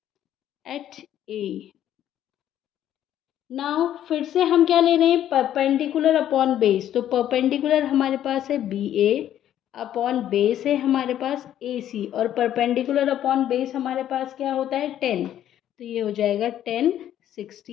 at A. Now फिर से हम क्या ले रहे हैं, परपेंडिकुलर अपॉन बेस। तो परपेंडिकुलर हमारे पास है बी ए, अपॉन बेस है हमारे पास ए सी, और परपेंडिकुलर अपॉन बेस हमारे पास क्या होता है 10। तो ये हो जाएगा 10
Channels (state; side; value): quieter; right; 11.3 dB